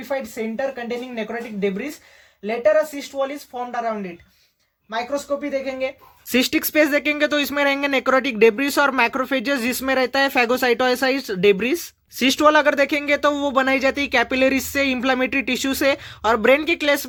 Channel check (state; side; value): identical; both; correlation 1.00